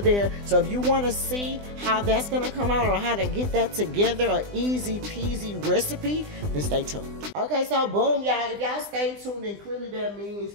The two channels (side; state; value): left; late; 20 ms